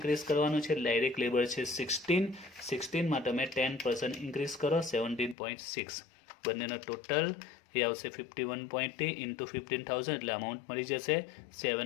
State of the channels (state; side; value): drops out; right; at 5.4 s